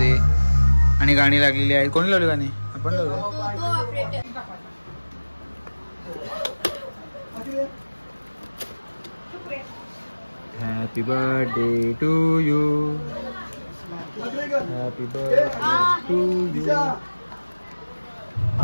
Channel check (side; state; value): both; inverted; correlation -1.00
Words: आणि गाणी लागलेली आहेत. कोणी लावली गाणी? आपण लावली. Happy birthday to you. Happy birthday to you.